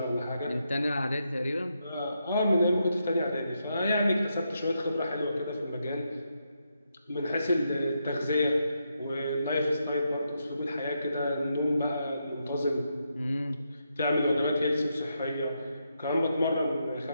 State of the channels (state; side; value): inverted; both; correlation -0.82